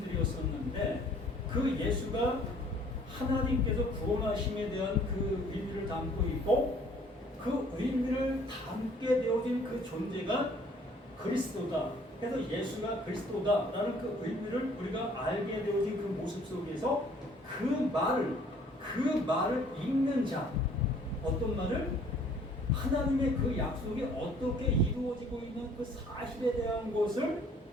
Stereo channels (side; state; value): both; normal; correlation 0.57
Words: 그 예수가 하나님께서 구원하심에 대한 그 의미를 담고 있고 그 의미를 담게 되어진 그 존재가 그리스도다. 그래서 예수가 그리스도다라는 그 의미를 우리가 알게 되어진 그 모습 속에서 그 말을 읽는 자, 어떤 말을? 하나님의 그 약속이 어떻게 이루어지고 있는 그 사실에 대한 것을